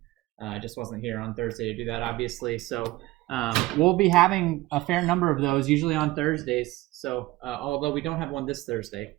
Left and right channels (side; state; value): left; quieter; 18.9 dB